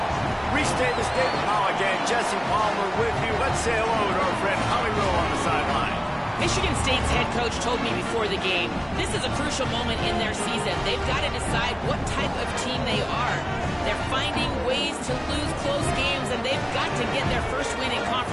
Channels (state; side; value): identical; both; correlation 1.00